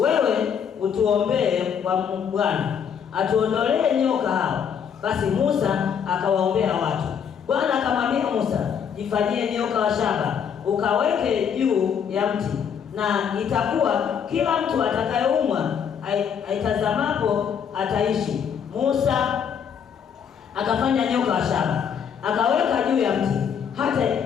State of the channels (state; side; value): quieter; right; 7.6 dB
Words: utuombee kwa Bwana atuondolee nyoka hao. Basi Musa akawaombea watu. Bwana akamwambia Musa, jifanyie nyoka wa shaba ukaweke juu ya mti, na itakuwa kila mtu atakayeumwa aitazamapo ataishi. Musa akafanya nyoka wa shaba akaweka juu ya mti, hata